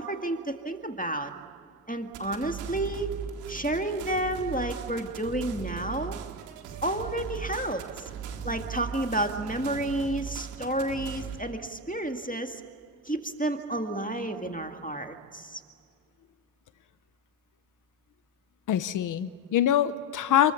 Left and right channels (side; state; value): both; normal; correlation 0.16